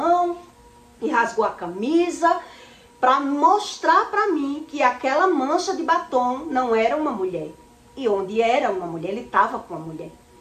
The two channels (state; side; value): identical; both; correlation 1.00